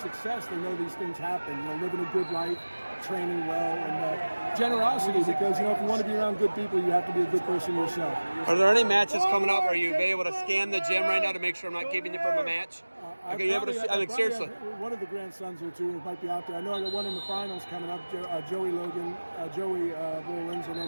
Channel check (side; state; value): both; inverted; correlation -1.00